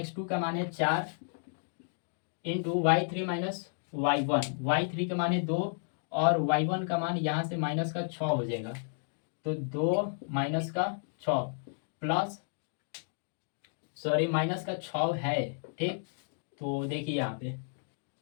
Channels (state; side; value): silent; right; digital silence